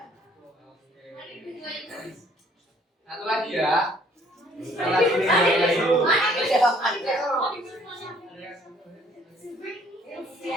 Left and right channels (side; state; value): both; normal; correlation 0.60